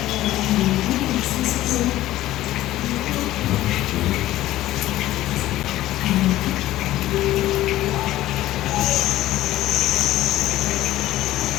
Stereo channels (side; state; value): right; quieter; 15.2 dB